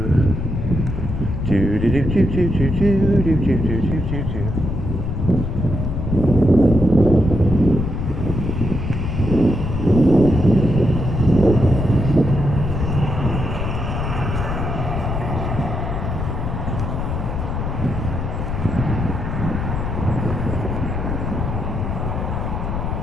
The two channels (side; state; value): left; noise; rumble, 3 dB below the sound